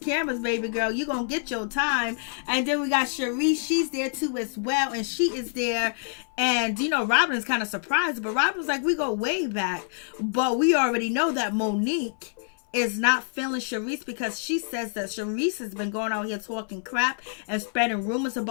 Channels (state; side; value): silent; right; 57 dB below the other